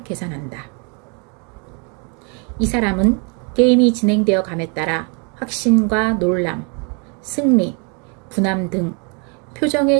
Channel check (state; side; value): quieter; left; 35.3 dB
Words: 계산한다. 이 사람은 게임이 진행되어 감에 따라 확신과 놀람, 승리, 분함 등